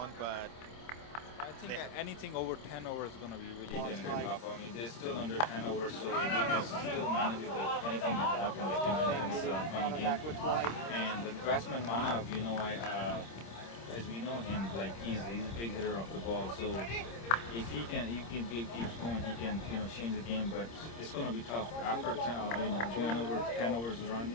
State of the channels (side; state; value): right; late; 26 ms